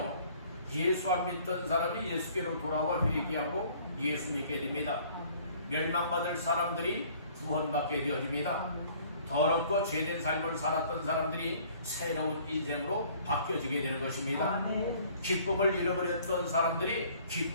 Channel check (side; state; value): both; inverted; correlation -0.56